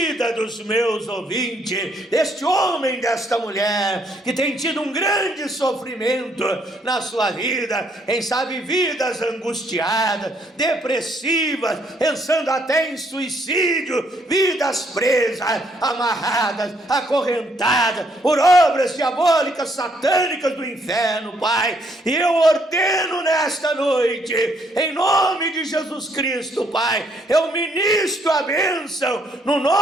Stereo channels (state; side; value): normal; both; correlation 0.70